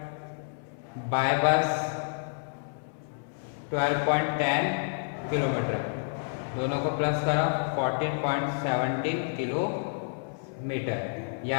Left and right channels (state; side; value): silent; right; 58 dB below the other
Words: by bus 12.10 kilometer, दोनों को plus करा 14.17 kilometer. यह